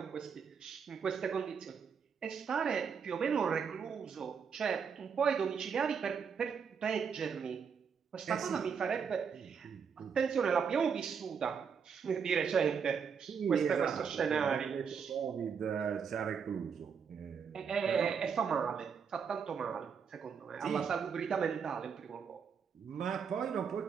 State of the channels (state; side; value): quieter; left; 6.5 dB